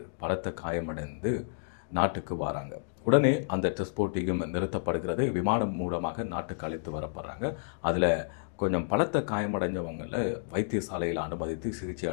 பலத்த காயமடைந்து நாட்டுக்கு வராங்க. உடனே அந்த டெஸ்ட் போட்டியும் நிறுத்தப்படுகிறது. விமானம் மூலமாக நாட்டுக்கு அழைத்து வரப்படுறாங்க. அதில் கொஞ்சம் பலத்த காயமடைஞ்சவங்களை வைத்தியசாலையில் அனுமதித்து சிகிச்சை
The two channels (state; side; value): silent; right; digital silence